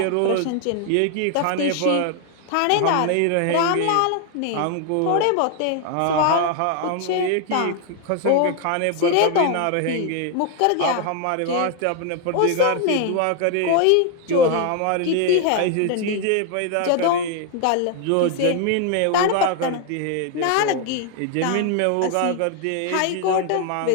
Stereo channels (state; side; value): different; both; correlation 0.00